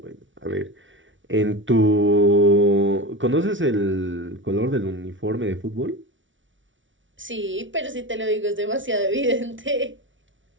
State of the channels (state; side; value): late; left; 0.56 ms